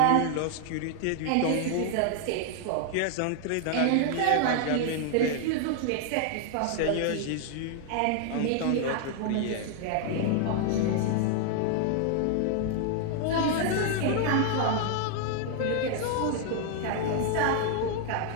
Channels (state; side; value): different; both; correlation 0.00